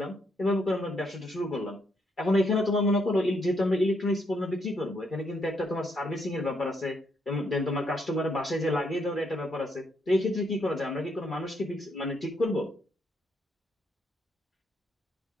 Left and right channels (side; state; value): both; normal; correlation 0.75